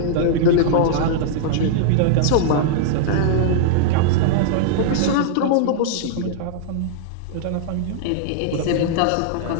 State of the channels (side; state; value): both; different; correlation -0.01